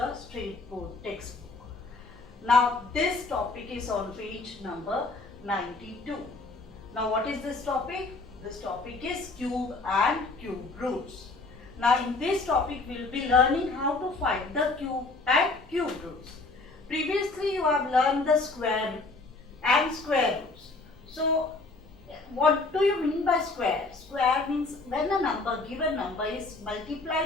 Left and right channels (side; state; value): right; quieter; 3.6 dB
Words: State Board textbook. Now this topic is on page number 92. Now what is this topic? This topic is cube and cube roots. Now in this topic we will be learning how to find the cube and cube roots. Previously you have learned the square and square roots. So what do you mean by square? Square means when a given number is